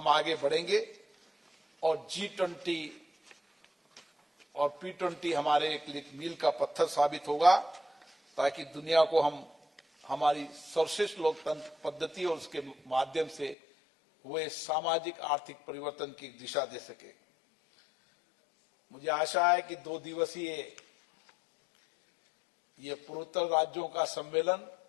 आगे बढ़ेंगे और G20 और P20 हमारे एक मील का पत्थर साबित होगा, ताकि दुनिया को हम हमारी सर्वश्रेष्ठ लोकतंत्र पद्धति और उसके माध्यम से हुए सामाजिक आर्थिक परिवर्तन की दिशा दे सके। मुझे आशा है कि 2 दिवसीय ये पूर्वोत्तर राज्यों का सम्मेलन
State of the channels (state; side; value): drops out; right; at 13.6 s